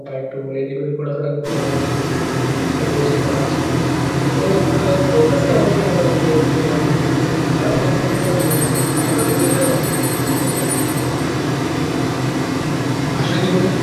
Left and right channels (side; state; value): both; identical; correlation 1.00